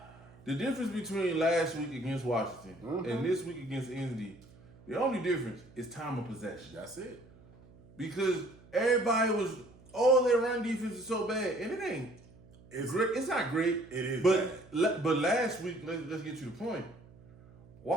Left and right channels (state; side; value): noise; right; hum, 24 dB below the sound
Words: The difference between last week against Washington and this week against Indy, the only difference is time of possession. that's it. Because everybody was, their run defense is so bad, and it ain't. It's Great. It's not great. It is But last week, let's get to the point.